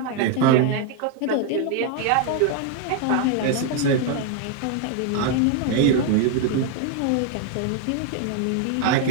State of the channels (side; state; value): both; different; correlation 0.00